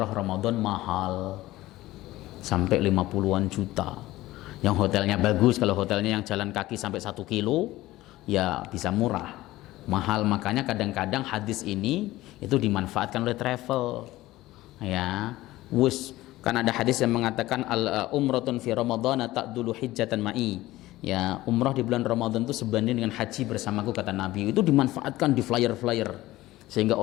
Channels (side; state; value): right; quieter; 17.0 dB